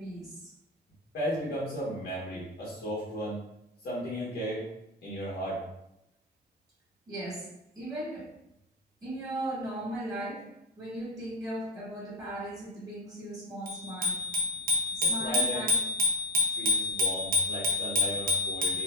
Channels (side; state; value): both; normal; correlation 0.13